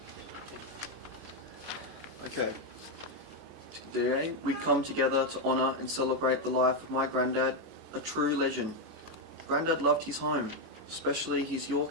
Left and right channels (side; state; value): both; normal; correlation 0.03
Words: Okay. Today we come together to honour and celebrate the life of my granddad, a true legend. Granddad loved his home, especially his